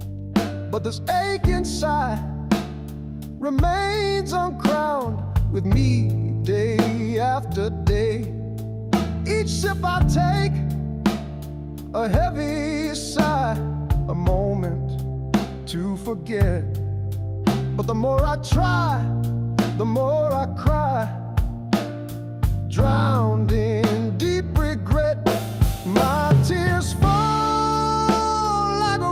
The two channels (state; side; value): identical; both; correlation 1.00